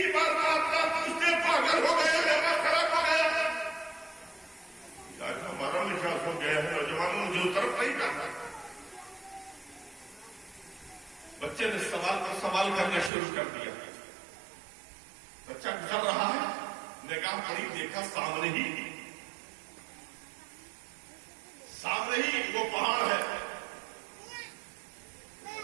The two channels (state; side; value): drops out; left; at 13.1 s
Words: بار آپ کا پوچھتے پاگل ہو گئے, دماغ خراب ہو گیا. آج ہمارا مزاج ہو گیا ہے نوجوانوں, مجھے طرف نہیں کرنا. بچے نے سوال پر سوال کرنا شروع کر دیا. بچہ گزر رہا ہے, نگاہ پڑی, دیکھا سامنے ہی وہ پہاڑ ہے,